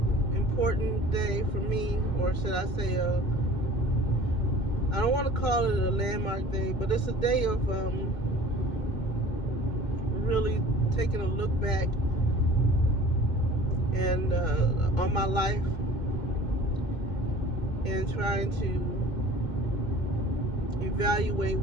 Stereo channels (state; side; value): late; right; 2.1 ms